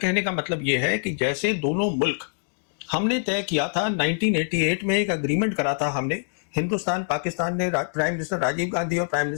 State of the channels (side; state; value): right; silent; digital silence